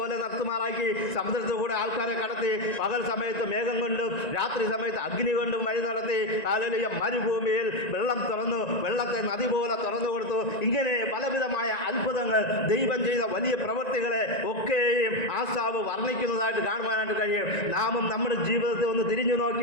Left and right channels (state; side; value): late; right; 1.9 ms